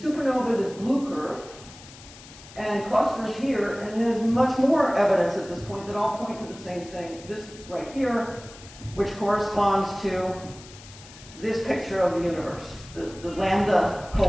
this blue curve, and clusters here, and there's much more evidence at this point that all point to the same thing. This right here, which corresponds to this picture of the universe, the lambda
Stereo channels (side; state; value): left; noise; hiss, 19 dB below the sound